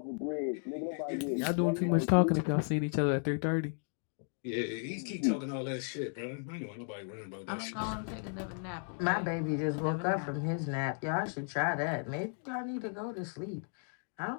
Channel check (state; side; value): silent; right; 55 dB below the other